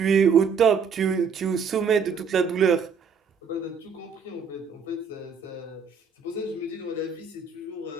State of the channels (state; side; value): quieter; left; 5.8 dB